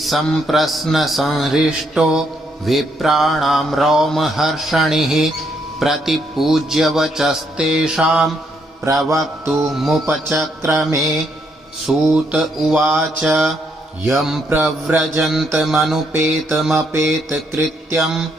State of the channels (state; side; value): normal; both; correlation 0.74